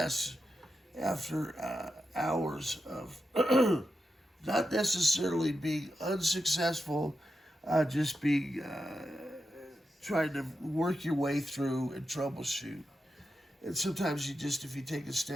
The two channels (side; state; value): both; normal; correlation 0.88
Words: after hours of not necessarily being unsuccessful, just being trying to work your way through and troubleshoot. And sometimes if you take a